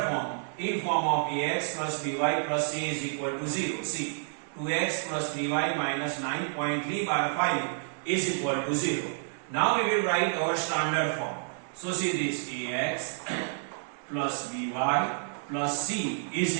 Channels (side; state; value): left; silent; digital silence